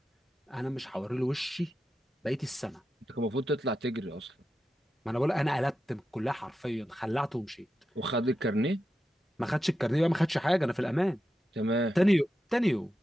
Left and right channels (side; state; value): both; normal; correlation 0.89